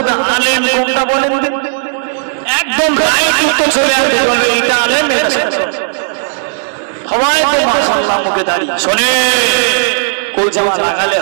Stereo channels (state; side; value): silent; left; digital silence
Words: আলেম কোনটা বলেন? একদম রাইট উত্তর চলে আসবে, এটা আলেম, এটা সবাই তো মাশাআল্লাহ মুখে দাঁড়িয়ে। শোনে, গোল জামা লাগালে